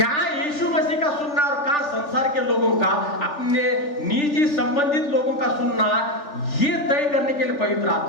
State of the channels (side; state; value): right; late; 3.4 ms